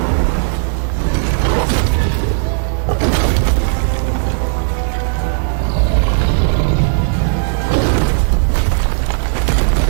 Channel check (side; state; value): left; silent; digital silence